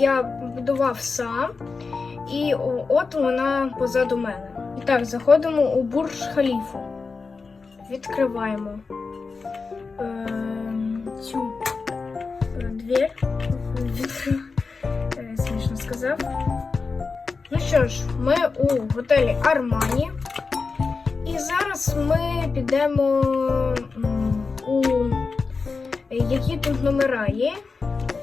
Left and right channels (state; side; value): quieter; right; 4.5 dB